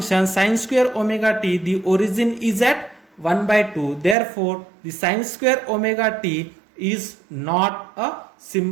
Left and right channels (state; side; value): drops out; left; at 4.2 s